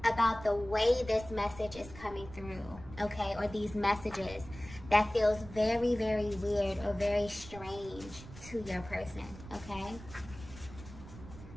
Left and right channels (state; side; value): noise; right; rumble, 15 dB below the sound